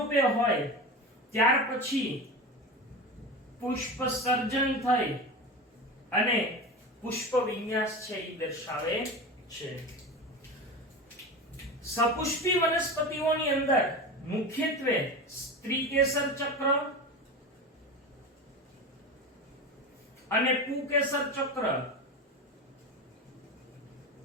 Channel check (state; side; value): normal; both; correlation 0.26